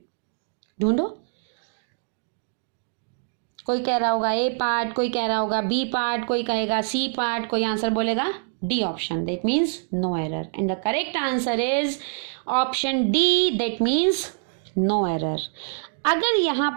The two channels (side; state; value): left; silent; digital silence